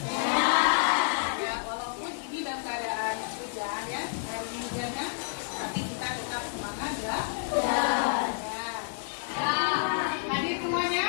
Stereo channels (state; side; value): silent; right; digital silence